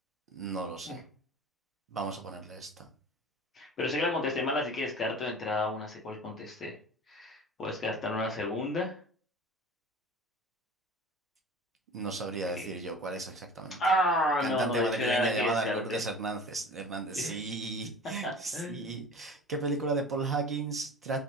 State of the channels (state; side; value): normal; both; correlation 0.39